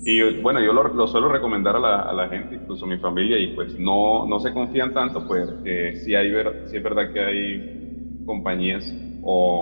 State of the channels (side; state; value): both; inverted; correlation -1.00